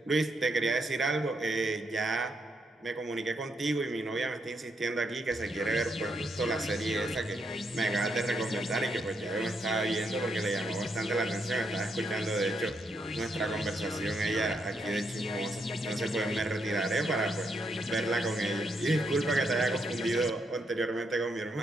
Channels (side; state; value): both; normal; correlation 0.78